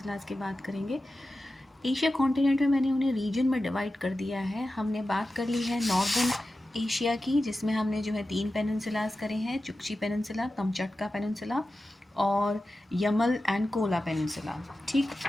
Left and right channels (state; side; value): normal; both; correlation 0.93